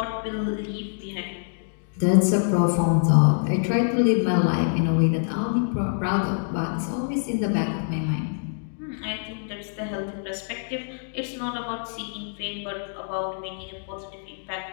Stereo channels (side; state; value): right; silent; digital silence